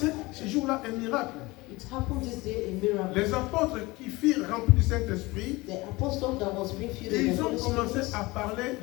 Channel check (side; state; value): right; quieter; 22.0 dB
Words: ce jour-là un miracle. It happened this day, a miracle. Les apôtres qui furent remplis du Saint-Esprit, The apostle that was being filled with ils the ont Holy commencé Spirit, à parler